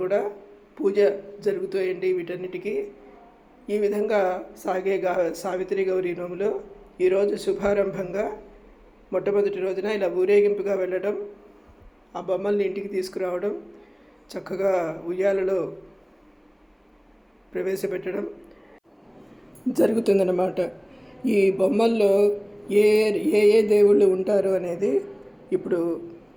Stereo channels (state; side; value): identical; both; correlation 1.00